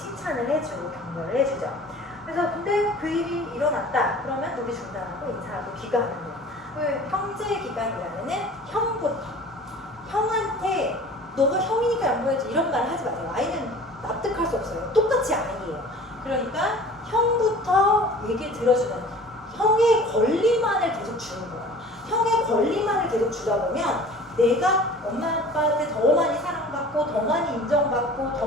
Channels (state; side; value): normal; both; correlation 0.44